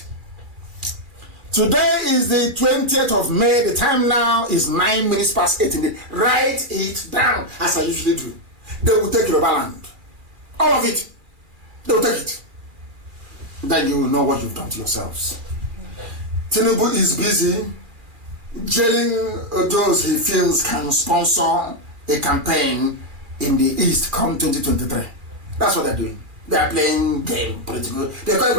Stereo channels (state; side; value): late; left; 2.3 ms